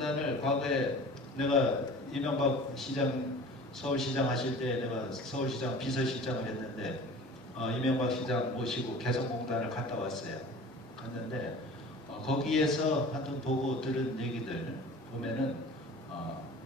과거에 내가 이명박 시장 서울시장 하실 때 내가 서울시장 비서실장을 했는데 이명박 시장 모시고 개성공단을 갔다 왔어요. 갔는데 거기에서 하여튼 보고 들은 얘기들 보면은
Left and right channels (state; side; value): normal; both; correlation 0.41